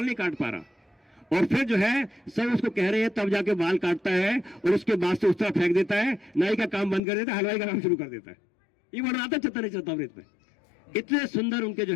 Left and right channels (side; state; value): right; drops out; at 7.0 s